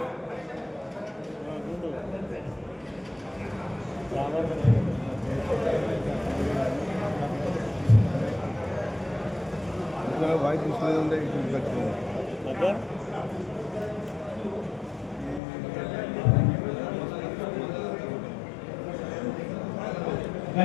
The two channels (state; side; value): drops out; right; at 15.4 s